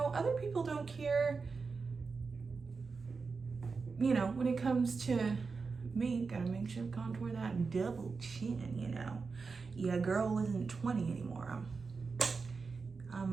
other people don't care. You know, when it comes to me, gotta make sure to contour that double chin, you know. Yeah, girl isn't 20 anymore.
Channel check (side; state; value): left; quieter; 4.7 dB